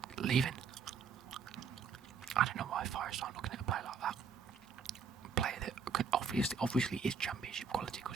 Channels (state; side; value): quieter; left; 6.0 dB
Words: leaving. I don't know why Forest aren't looking at a player like that. A player that could obviously is championship quality